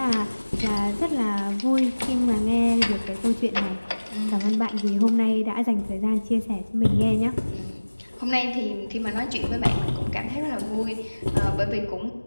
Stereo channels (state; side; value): inverted; both; correlation -1.00